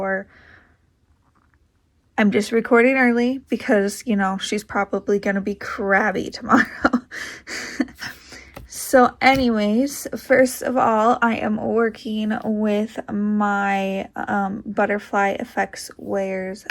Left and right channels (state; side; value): identical; both; correlation 1.00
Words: I'm just recording early because, you know, she's probably going to be crabby tomorrow. So anyways, first of all, I am working with my Butterfly Effects Wears